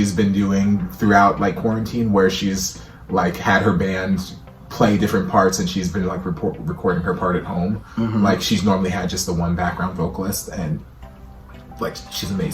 been doing throughout like quarantine, where she's like had her band play different parts and she's been like recording her part at home. Like she's normally had just the one background vocalist, and like she's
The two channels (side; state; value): both; identical; correlation 1.00